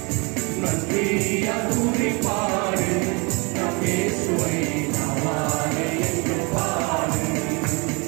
நன்றியால் துதி பாடு நம் இயேசுவை நாவாலே என்றும் பாடு.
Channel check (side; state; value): left; quieter; 29.8 dB